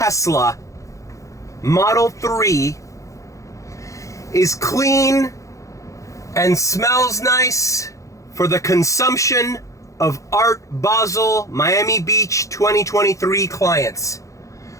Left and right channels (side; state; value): right; late; 0.15 ms